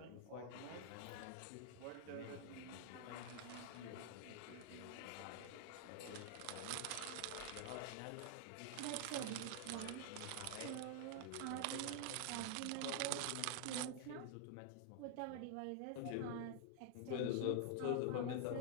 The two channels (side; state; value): both; different; correlation 0.00